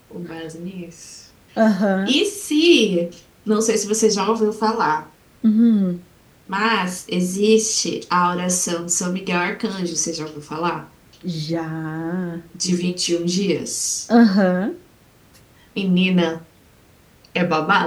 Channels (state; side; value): identical; both; correlation 1.00